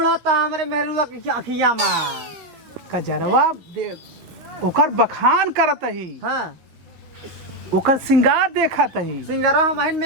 था हमारे मेहरुआ की अखिया में। कजरवा ओकर बखान करत ही। हाँ ओकर सिंगार देखत ही। सिंगरा हम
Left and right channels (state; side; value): late; left; 11 ms